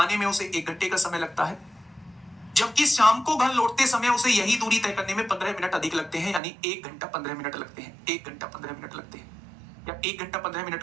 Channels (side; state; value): left; drops out; at 6.4 s